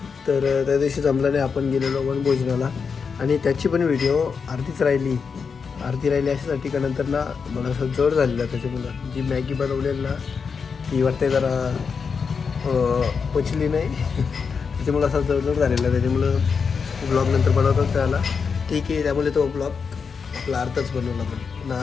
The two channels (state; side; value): quieter; right; 5.7 dB